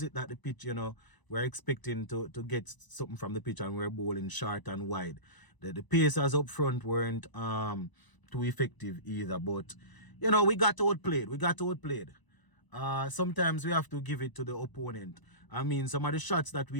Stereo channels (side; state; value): right; late; 1.0 ms